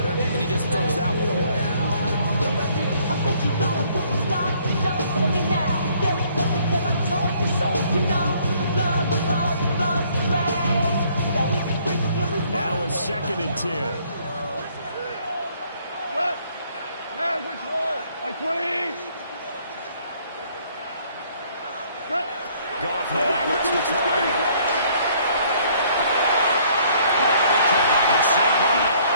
and he just throws that one away. Now a 2nd and 10. What? Man, control. Like 20. Goff now looks to throw. It's St. Brown.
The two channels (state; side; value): inverted; both; correlation -0.63